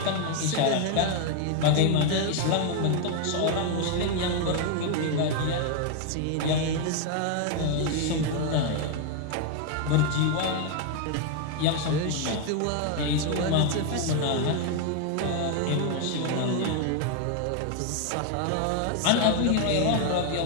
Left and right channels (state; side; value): different; both; correlation 0.00